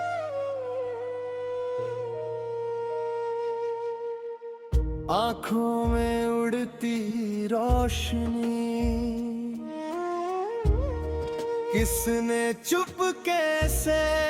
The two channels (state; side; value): identical; both; correlation 1.00